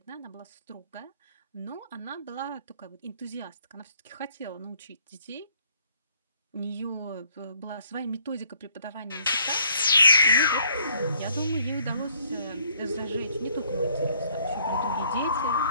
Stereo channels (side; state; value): both; inverted; correlation -0.65